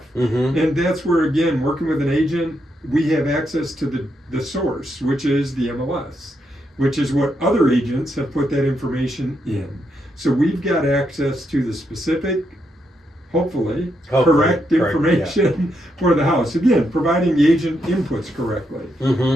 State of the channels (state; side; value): normal; both; correlation 0.80